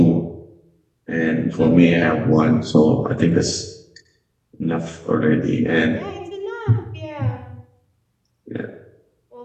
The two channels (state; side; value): identical; both; correlation 1.00